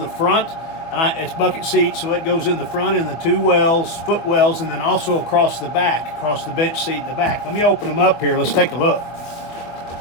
front, and it's bucket seat, so it goes in the front in the two wells, foot wells, and then also across the back, across the bench seat in the back. Let me open them up here. Let's take a look.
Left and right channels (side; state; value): right; late; 24 ms